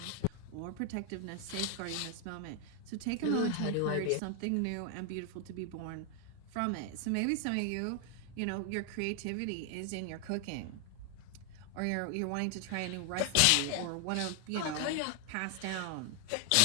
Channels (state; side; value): different; both; correlation 0.00